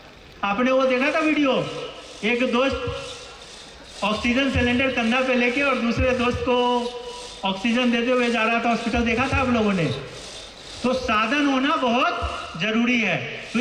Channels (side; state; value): both; identical; correlation 1.00